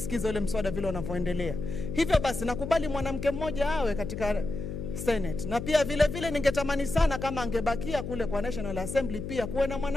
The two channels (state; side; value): noise; left; hum, 6 dB below the sound